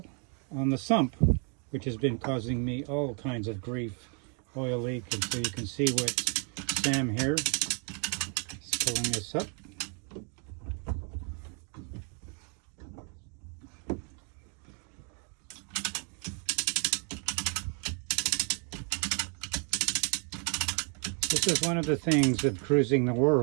on the sump, which has been causing me all kinds of grief. Oil leak, and so you can see what Sam here is pulling this up. This is one of the things of cruising the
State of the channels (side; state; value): left; quieter; 39.1 dB